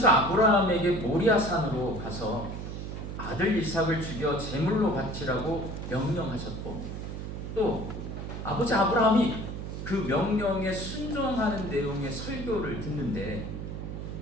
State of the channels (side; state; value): right; noise; hum, 7 dB below the sound